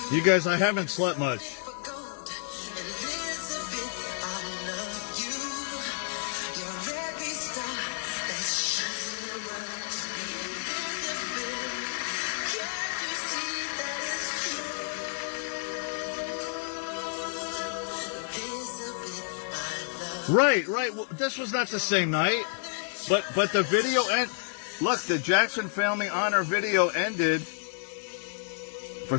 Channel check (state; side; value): silent; right; digital silence